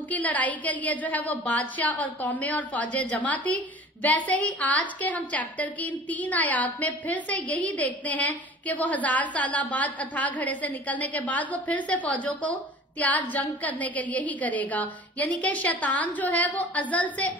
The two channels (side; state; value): both; normal; correlation 0.43